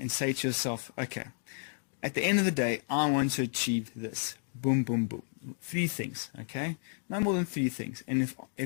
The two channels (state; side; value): silent; right; digital silence